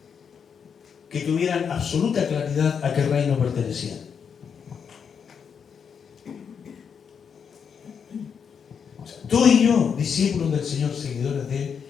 que tuvieran absoluta claridad a qué reino pertenecían. O sea, tú y yo, discípulos del Señor, seguidores de Él,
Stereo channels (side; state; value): right; quieter; 6.9 dB